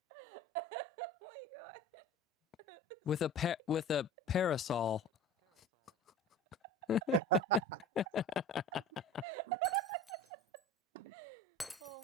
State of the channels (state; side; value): normal; both; correlation 0.37